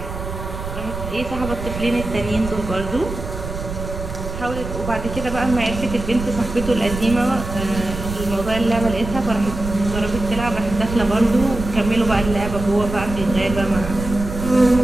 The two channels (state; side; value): noise; right; rumble, 7 dB below the sound